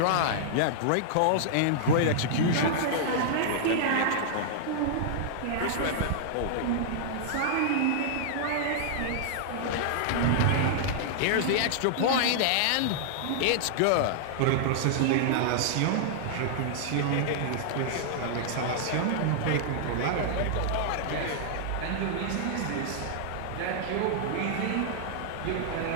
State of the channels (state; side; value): different; both; correlation -0.01